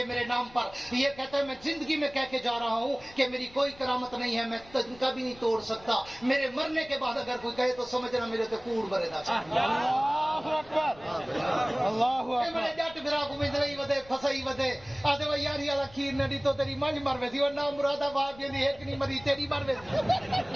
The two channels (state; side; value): noise; left; rumble, 23 dB below the sound